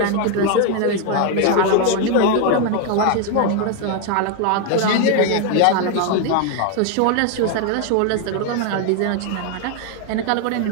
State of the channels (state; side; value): different; both; correlation 0.01